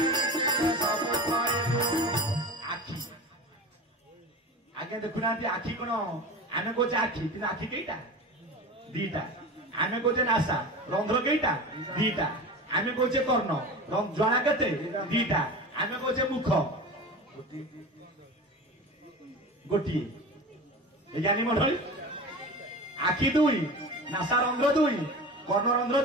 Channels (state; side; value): normal; both; correlation 0.32